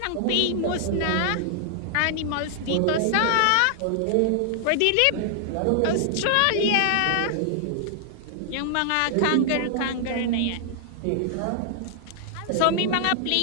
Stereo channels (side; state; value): both; different; correlation -0.01